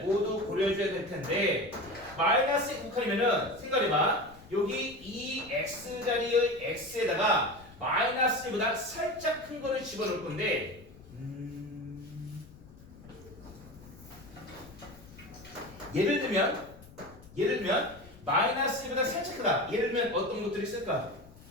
모두 고려해줘야 될 텐데 마이너스 1 우극한이면은 생각해봐. 여기 이 x 자리의 x에다가 마이너스 1보다 살짝 큰 거를 집어넣을 건데 예를 들면 마이너스 1보다 살짝 크다. 예를 들면 어떤 것들이 있을까?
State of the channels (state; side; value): noise; left; rumble, 21 dB below the sound